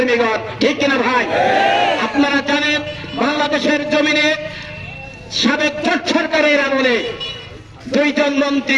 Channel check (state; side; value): identical; both; correlation 1.00